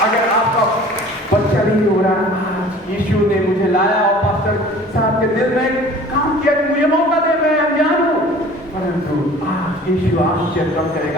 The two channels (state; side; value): normal; both; correlation 0.46